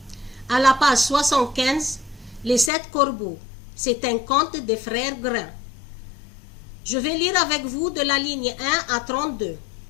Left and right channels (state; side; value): drops out; right; at 2.7 s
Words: À la page 75, les 7 corbeaux. C'est un conte des frères Grimm. Je vais lire avec vous de la ligne 1 à 32.